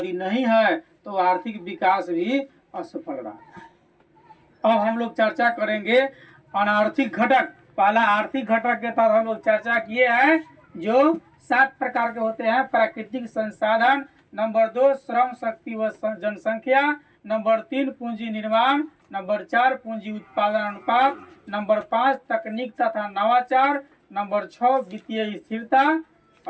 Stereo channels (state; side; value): identical; both; correlation 1.00